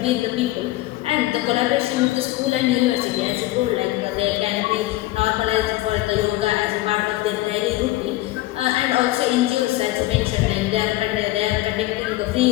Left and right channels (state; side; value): quieter; right; 17.4 dB